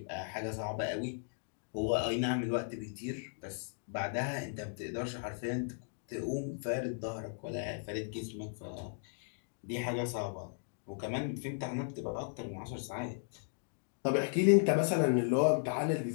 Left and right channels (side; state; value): right; silent; digital silence